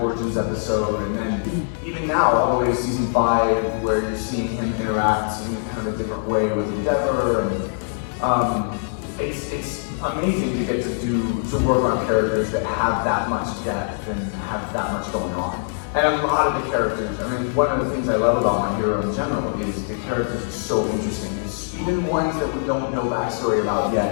Origins episode, and then even now, all the way to season 5, where you're seeing him interact in kind of a different way with Endeavor, and it's amazing to get to work on characters that have that much depth and have that much going on. And a lot of the characters, I mean, one of the things I love about My Hero in general is the characters are so interesting. It's even ones that we don't know backstory about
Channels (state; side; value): silent; right; digital silence